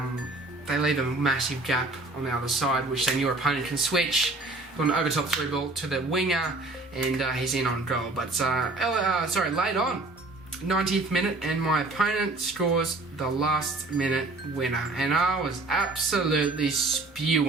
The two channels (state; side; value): quieter; left; 3.0 dB